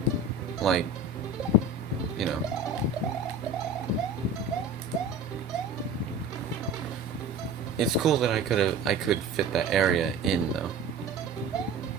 like, you know. It's cool that I could fit that area in, though.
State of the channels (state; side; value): quieter; left; 3.5 dB